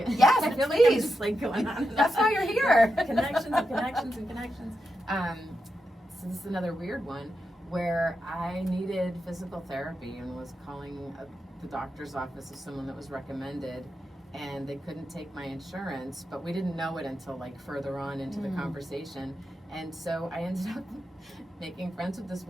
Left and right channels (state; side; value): normal; both; correlation 0.87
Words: Yes, I feel like I'm please. just like going on. And That's on. why you're here. Connections and connections and connections. So this is another weird one where I needed physical therapy and was calling the doctor's office of someone that was recommended, and they couldn't take my insurance, but we didn't know it until like further on into the conversation. And so I ended up making friends with this